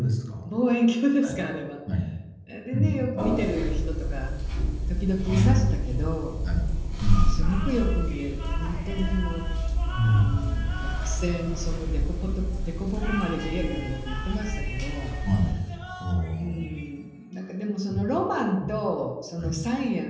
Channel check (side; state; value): both; identical; correlation 1.00